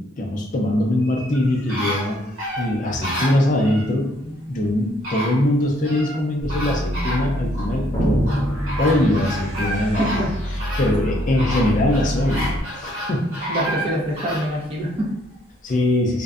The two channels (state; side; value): normal; both; correlation 0.68